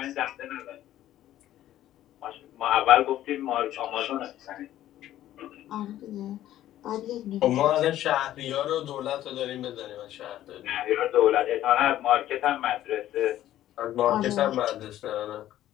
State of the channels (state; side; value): quieter; right; 13.1 dB